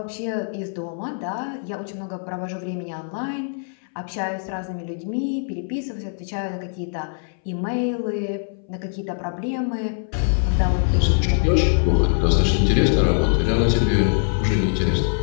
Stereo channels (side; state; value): right; silent; 62 dB below the other